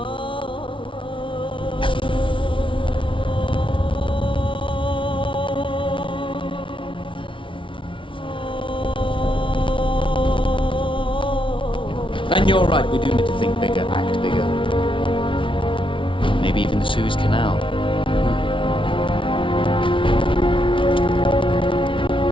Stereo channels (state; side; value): late; right; 0.25 ms